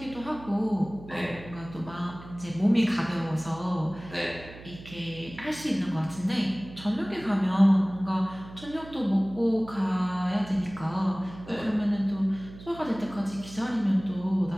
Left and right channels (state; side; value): noise; right; hum, 16 dB below the sound